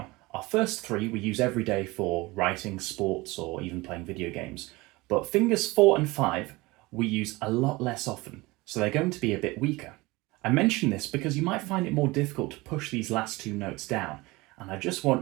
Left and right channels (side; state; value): left; quieter; 22.2 dB